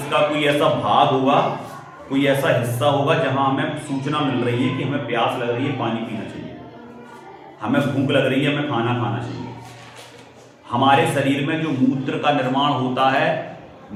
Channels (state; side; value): identical; both; correlation 1.00